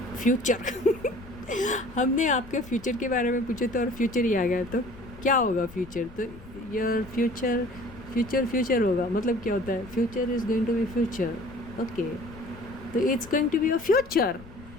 फ्यूचर हमने आपके फ्यूचर के बारे में पूछे तो और फ्यूचर ही आ गया, तो क्या होगा फ्यूचर? तो योर फ्यूचर होगा, मतलब क्या होता है? Future is going to be future. Okay, तो it's going to be your future.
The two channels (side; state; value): left; noise; rumble, 19 dB below the sound